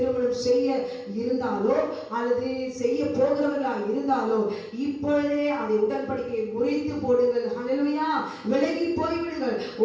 செய்ய இருந்தாலோ அல்லது செய்ய போகிறவர்களா இருந்தாலோ இப்பொழுதே அதை உடன்படிக்கையை முறித்து போடுங்கள். ஹல்லேலூயா! விலகி போய்விடுங்கள்,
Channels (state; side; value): identical; both; correlation 1.00